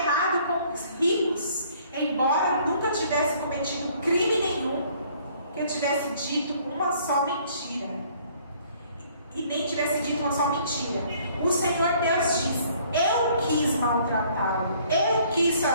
com os ricos, embora nunca tivesse cometido crime nenhum, que tivesse dito uma só mentira. E nem tivesse dito uma só mentira. O Senhor Deus diz: eu quis maltratá-lo, eu quis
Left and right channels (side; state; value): both; inverted; correlation -0.60